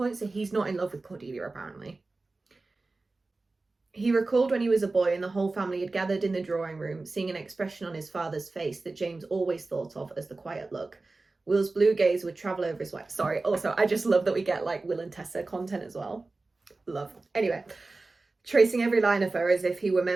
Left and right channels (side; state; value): left; quieter; 3.4 dB